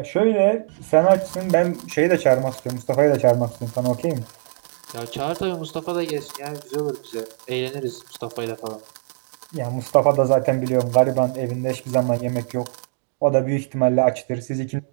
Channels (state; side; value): silent; left; digital silence